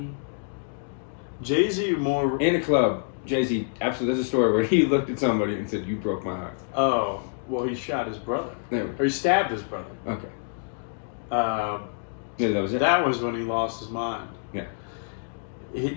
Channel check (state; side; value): silent; right; digital silence